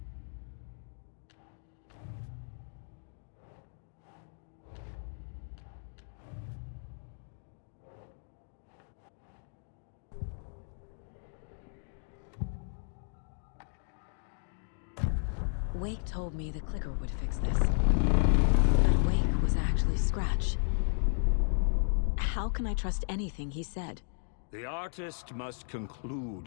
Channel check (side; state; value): right; silent; digital silence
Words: Wake told me the clicker would fix this. But Wake was actually Scratch. How can I trust anything he said? The artist must conclude